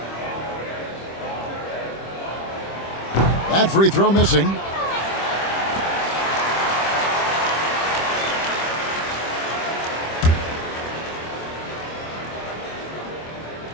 That free throw missing.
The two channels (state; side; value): late; right; 25 ms